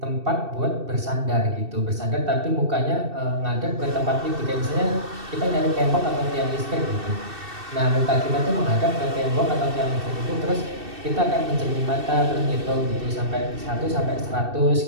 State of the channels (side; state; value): left; late; 2.7 ms